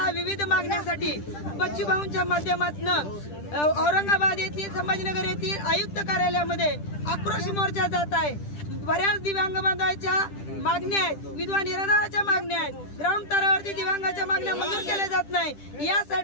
विविध मागण्यासाठी बच्चूभाऊंच्या माध्यमातून औरंगाबाद येथील संभाजीनगर येथील आयुक्त कार्यालयामध्ये आक्रोश मोर्चा जात आहे। बऱ्याच दिव्यांग बांधवांच्या मागण्या आहेत, विधवा निराधाराच्या मागण्या आहेत, ग्राउंड स्तरावरती दिव्यांगाच्या मागण्या मंजूर केल्या जात नाही।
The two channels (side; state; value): right; late; 10 ms